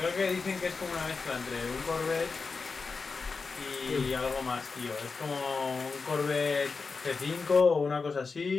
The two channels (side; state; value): right; quieter; 4.6 dB